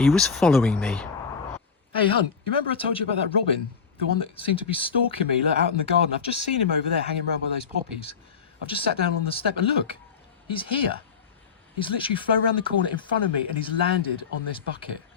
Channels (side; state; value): right; quieter; 6.0 dB